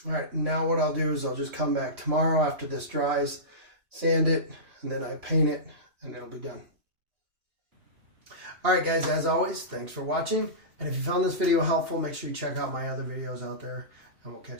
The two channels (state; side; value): late; left; 2.8 ms